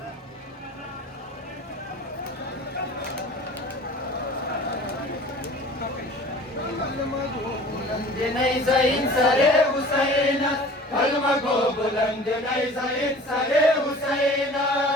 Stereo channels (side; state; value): both; normal; correlation 0.44